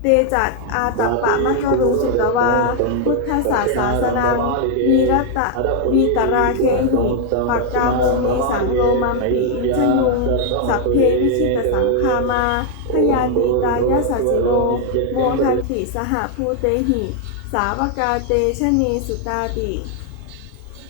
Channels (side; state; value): both; different; correlation 0.00